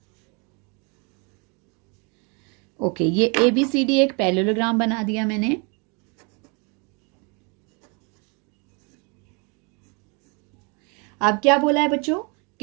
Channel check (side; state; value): left; quieter; 33.2 dB